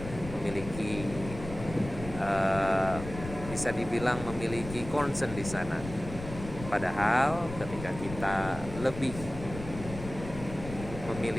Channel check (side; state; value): left; noise; rumble, 11 dB below the sound